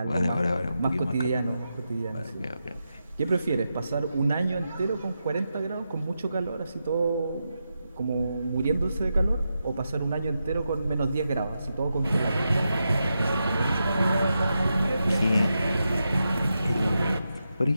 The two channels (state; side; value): inverted; both; correlation -0.87